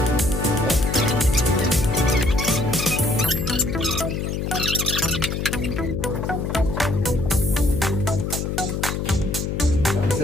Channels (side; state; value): left; noise; hum, 2 dB below the sound